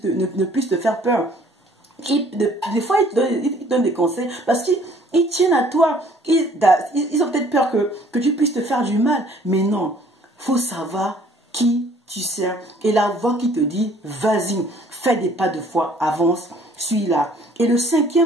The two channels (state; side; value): normal; both; correlation 0.57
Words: puisse te faire peur. Des fois, ils te donnent des conseils parce qu'ils tiennent à toi. Ils ont peut-être peur que tu puisses te faire du mal. Mais non, il faut savoir qui tu sers. Et la voix qui te dit, vas-y, fais des pas de foi, avance, suis-là. Et le